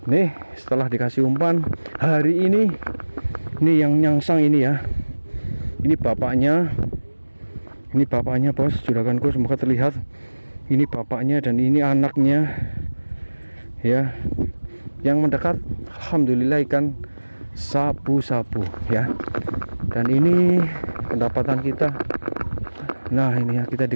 Nih setelah dikasih umpan hari ini yang nyangsang ini ya, ini bapaknya bos juraganku, semoga terlihat. Ini bapaknya dan ini anaknya ya. Yang mendekat alhamdulillah ikan sapu-sapu ya. Dan ini pendapatan kita. Nah ini ya, kita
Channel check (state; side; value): inverted; both; correlation -1.00